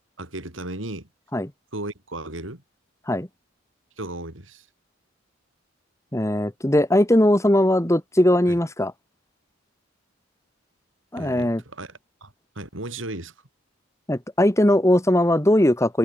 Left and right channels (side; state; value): both; normal; correlation 0.85